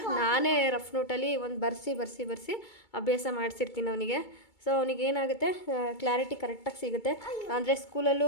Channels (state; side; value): late; right; 2.2 ms